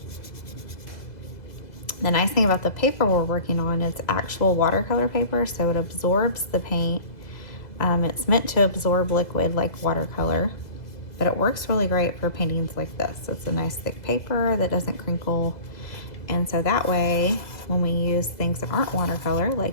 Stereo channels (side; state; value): right; late; 2.0 ms